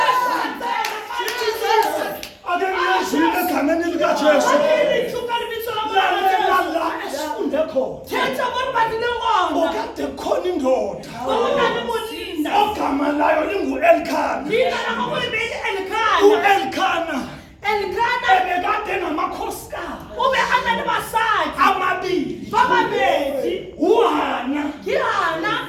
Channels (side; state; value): both; identical; correlation 1.00